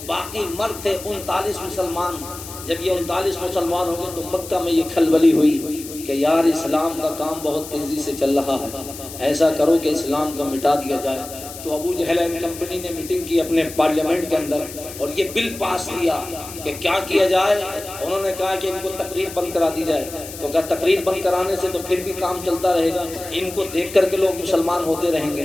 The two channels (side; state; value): left; noise; hiss, 13 dB below the sound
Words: باقی مرد تھے 39 مسلمان۔ جب یہ 39 مسلمان ہو گئے تو مکہ میں یہ کھلبلی ہوئی کہ یار اسلام کا کام بہت تیزی سے چل رہا ہے، ایسا کرو کہ اسلام کو مٹا دیا جائے۔ تو ابو جہل اینڈ کمپنی نے میٹنگ کی اپنے پارلیمنٹ کے اندر اور یہ بل پاس کیا کہ کیا کیا جائے۔ انہوں نے کہا کہ ان کو تقریر بند کرا دی جائے۔ تو کہا تقریر بند کرانے سے تو پھر بھی کام چلتا رہے گا، ان کو دیکھ کر کے لوگ مسلمان ہوتے رہیں گے۔